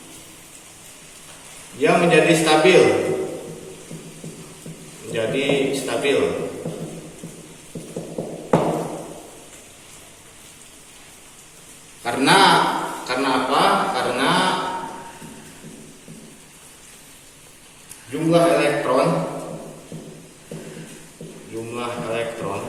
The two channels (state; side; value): identical; both; correlation 1.00